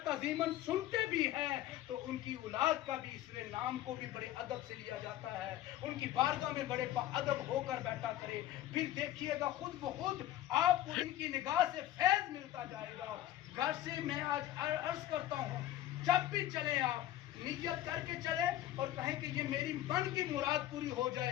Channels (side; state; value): right; quieter; 13.4 dB